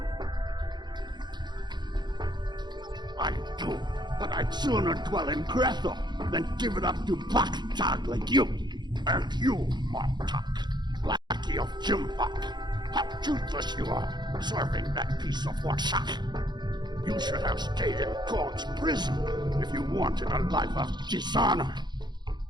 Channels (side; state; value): left; late; 0.21 ms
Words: I do, but I'd sooner dwell in Grethel than give it up to Baktag like you. And you, Martok, lackey of Jimpak. How toothless you are, serving that piece of workshop. You should have stayed in God's prison if you wanted a life of dishonor.